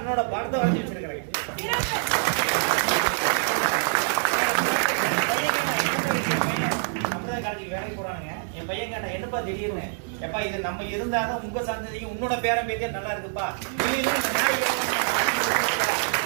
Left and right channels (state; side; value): silent; left; 61 dB below the other